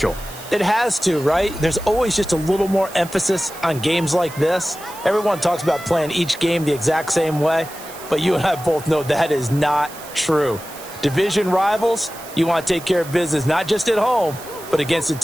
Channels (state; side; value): noise; right; hiss, 16 dB below the sound